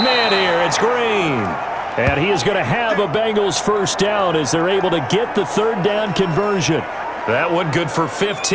here. It's Green. And he is going to have a Bengals 1st down as they're able to get the 3rd down conversion. That one good for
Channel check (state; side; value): identical; both; correlation 1.00